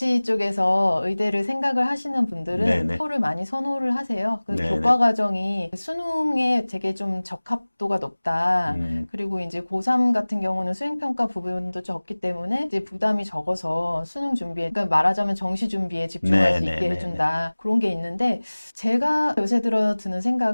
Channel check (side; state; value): both; inverted; correlation -1.00